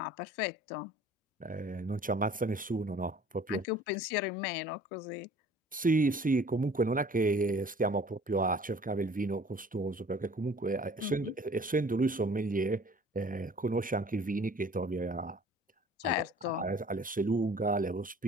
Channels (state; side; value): normal; both; correlation 0.51